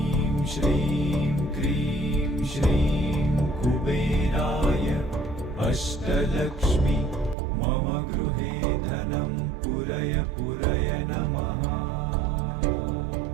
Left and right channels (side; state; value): left; drops out; at 7.4 s